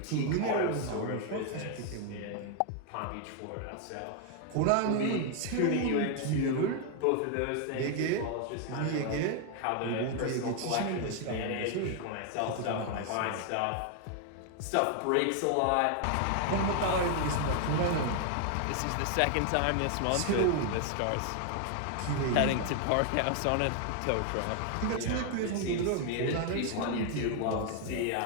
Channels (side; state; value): both; different; correlation 0.00